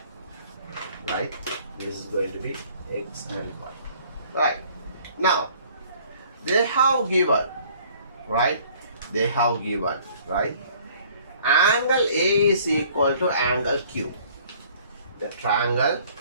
Right, this is going to be x and y. Right, now they have given, right, they have given, right, angle A is equal to angle Q. The triangle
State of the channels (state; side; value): inverted; both; correlation -0.56